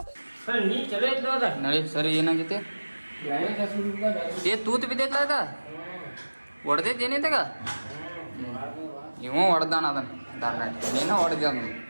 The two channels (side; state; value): both; inverted; correlation -1.00